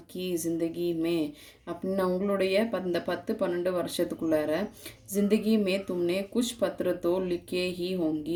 की ज़िंदगी में அப்படின்னா உங்களுடைய இந்த 10-12 வருஷத்துக்குள்ளார ज़िंदगी में तुमने कुछ पत्र तो लिखे ही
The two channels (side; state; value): both; identical; correlation 1.00